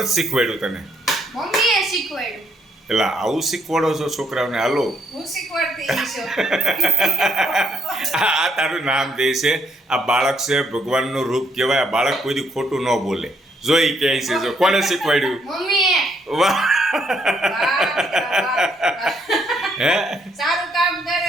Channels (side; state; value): both; normal; correlation 0.72